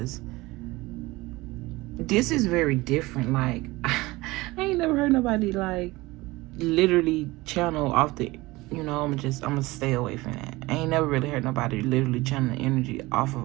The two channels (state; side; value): quieter; left; 20.7 dB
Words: this is very different. Like I ain't never heard nobody like literally channel off the, I'm gonna stay away from that. I ain't never really heard nobody literally channel the energy off of